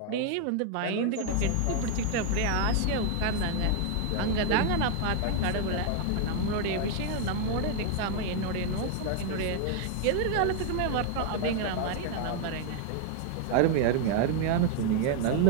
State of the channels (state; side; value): different; both; correlation 0.00